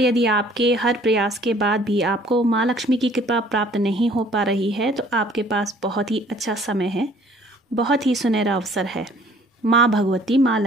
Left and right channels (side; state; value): both; normal; correlation 0.56